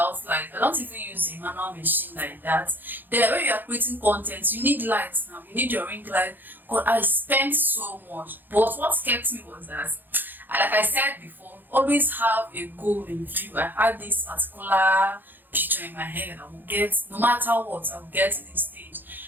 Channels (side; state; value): left; late; 0.090 ms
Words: light. I don't even use a manual machine like that. Then when you are creating content, you need lights now. You need your ring light. God, I spent so much. But what kept me was that, like I said before, always have a goal in view. I had this particular picture in my head. I will get, no matter what, I will get to this